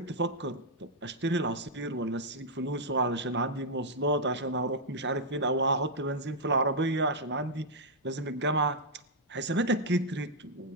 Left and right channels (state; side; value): normal; both; correlation -0.06